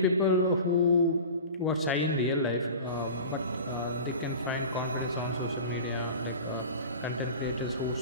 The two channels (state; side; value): inverted; both; correlation -0.35